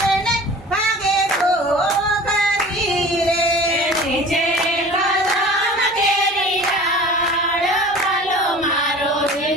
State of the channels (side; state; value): both; normal; correlation 0.42